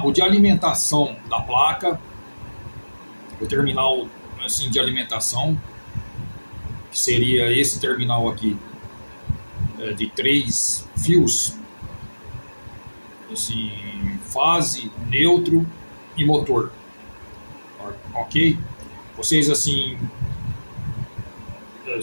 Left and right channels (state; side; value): inverted; both; correlation -1.00